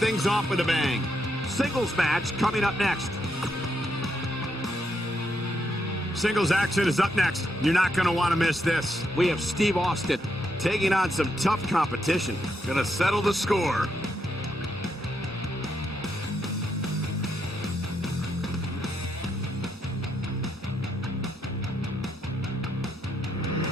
things off with a bang. Singles match coming up next. Singles action is up next. You're not going to want to miss this. We have Steve Austin taking on some tough competition. Gonna settle the score.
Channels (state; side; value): normal; both; correlation 0.80